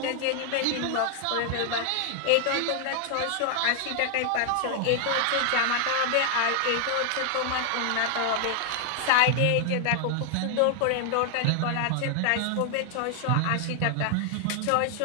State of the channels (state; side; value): different; both; correlation 0.00